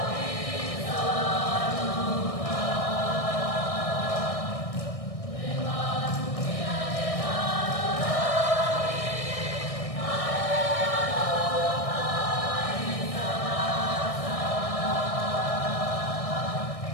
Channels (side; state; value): right; late; 1.6 ms